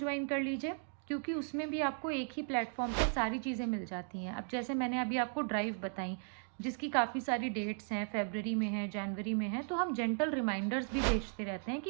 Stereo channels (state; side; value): silent; left; 54 dB below the other